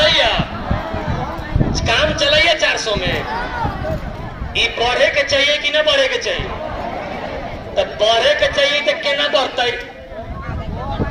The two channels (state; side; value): identical; both; correlation 1.00